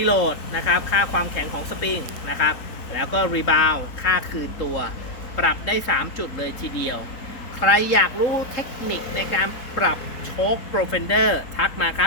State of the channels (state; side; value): late; right; 4.2 ms